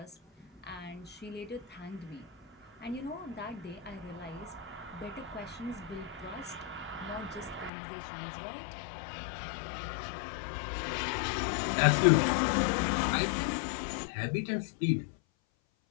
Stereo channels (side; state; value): right; drops out; at 7.7 s